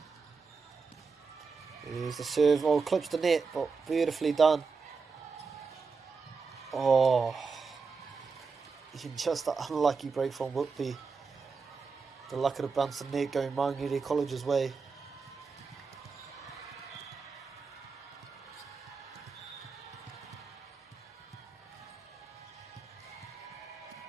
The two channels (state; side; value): quieter; left; 4.9 dB